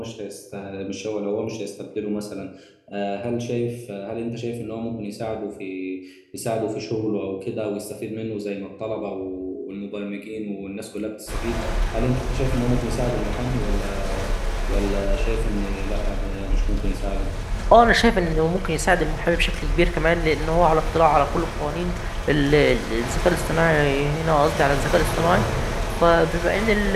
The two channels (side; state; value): both; identical; correlation 1.00